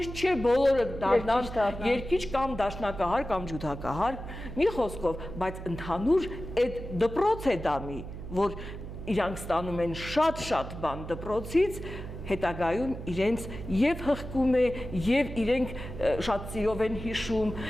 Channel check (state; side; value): noise; right; hum, 10 dB below the sound